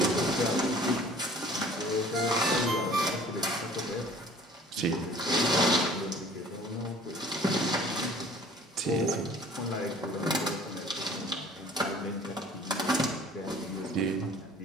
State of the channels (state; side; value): normal; both; correlation 0.50